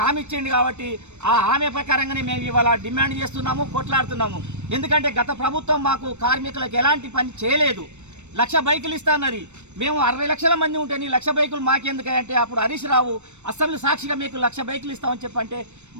హామీ ఇచ్చింది కాబట్టి ఆ హామీ ప్రకారంగానే మేము ఇవాళ డిమాండ్ చేస్తున్నాము, కొట్లాడుతున్నాము. ఎందుకంటే గత ప్రభుత్వం మాకు కార్మికులకు ఎలాంటి పని చేయలేదు. 1,00,000 బైకులు ఇస్తానది. మేము 60 లక్షల మంది ఉంటే 1,00,000 బైకులు మాకెందుకంటే అప్పుడు హరీష్ రావు అసెంబ్లీ సాక్షిగా మీకు 1,00,000 బైకులు ఇస్తామని చెప్పంటే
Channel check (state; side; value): late; left; 0.83 ms